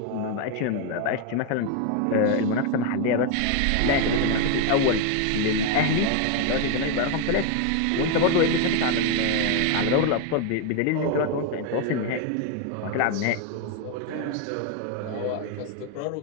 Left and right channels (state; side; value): different; both; correlation 0.01